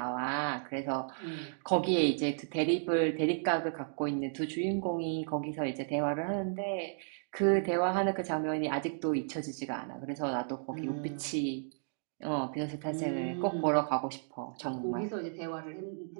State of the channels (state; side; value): silent; left; digital silence